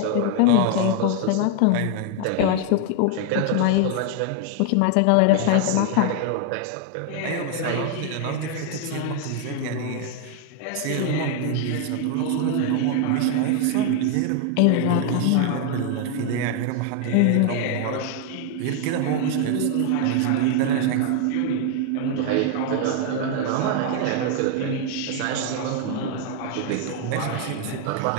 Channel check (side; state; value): both; different; correlation 0.00